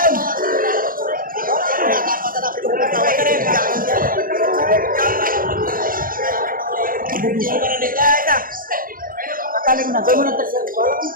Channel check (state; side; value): late; left; 0.41 ms